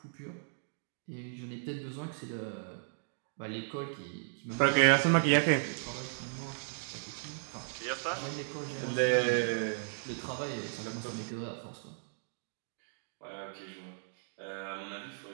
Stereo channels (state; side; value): silent; left; digital silence